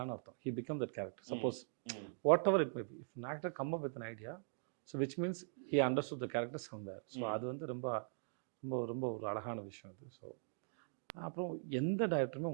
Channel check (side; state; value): left; silent; digital silence